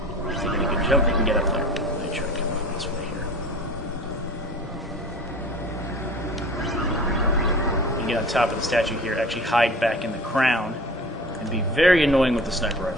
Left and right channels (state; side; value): normal; both; correlation 0.41